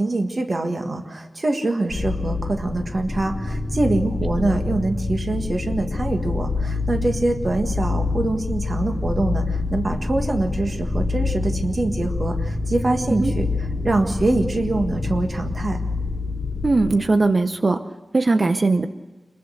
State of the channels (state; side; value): normal; both; correlation 0.92